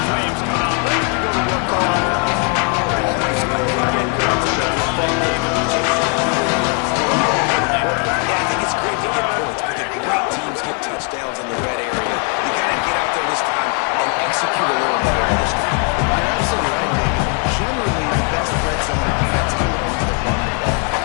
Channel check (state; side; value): quieter; right; 37.3 dB